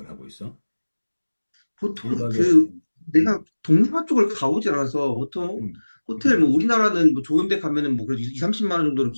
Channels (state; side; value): inverted; both; correlation -1.00